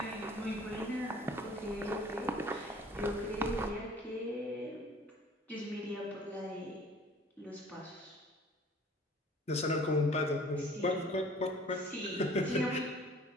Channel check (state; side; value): normal; both; correlation 0.50